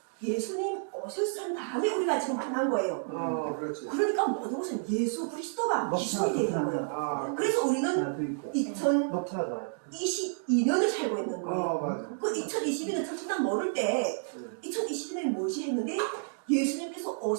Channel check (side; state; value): left; silent; digital silence